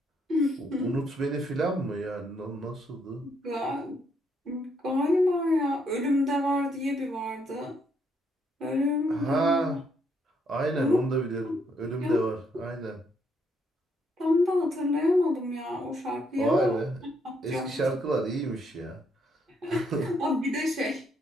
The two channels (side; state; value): both; normal; correlation 0.73